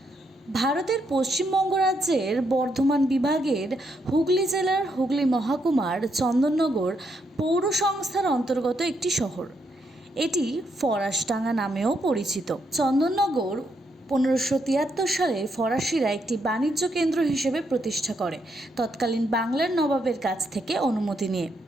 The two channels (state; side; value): normal; both; correlation 0.78